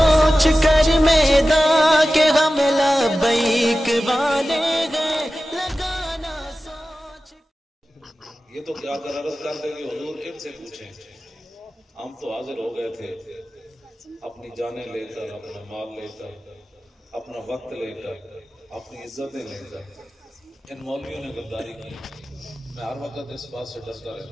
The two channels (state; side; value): normal; both; correlation 0.95